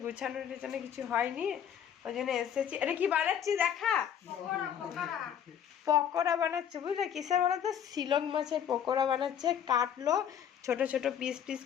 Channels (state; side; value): quieter; right; 9.0 dB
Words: গুছানোর পিছনে কিছু হয়নি, ওই জন্য এসেছি। এটা কি বানাচ্ছি দেখা? পকোড়া বানাচ্ছে বুঝলে। কিসের বলো তো? শিলং মাছের পকোড়া বানাচ্ছে। কাটলো ছোট ছোট পিস পিস